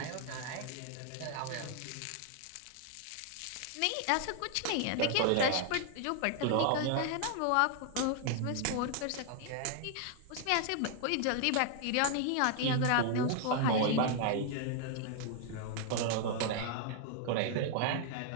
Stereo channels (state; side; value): different; both; correlation 0.00